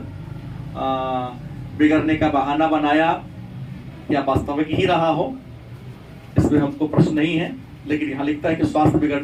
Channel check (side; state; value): both; identical; correlation 1.00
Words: बिगड़ने का बहाना बनाया, या वास्तविक ही रहा हो इसमें हमको प्रश्न नहीं है, लेकिन यहाँ लिखता है कि स्वास्थ्य